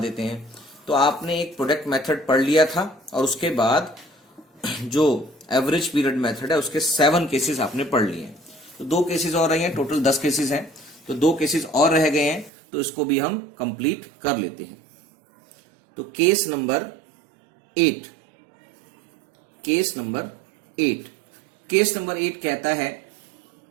हैं। तो आपने एक प्रोडक्ट मेथड पढ़ लिया था और उसके बाद जो एवरेज पीरियड मेथड है उसके 7 केसेस आपने पढ़ लिए हैं। तो 2 केसेस और रहे हैं, टोटल 10 केसेस हैं, तो 2 केसेस और रह गए हैं, तो इसको भी हम कंप्लीट कर लेते हैं। तो केस नंबर 8 कहता है,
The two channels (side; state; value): left; drops out; at 12.5 s